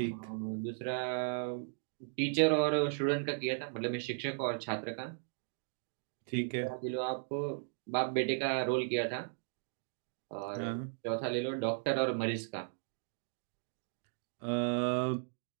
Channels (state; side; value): silent; left; digital silence